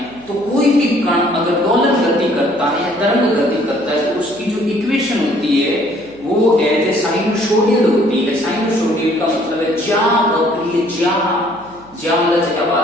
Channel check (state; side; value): noise; right; hum, 25 dB below the sound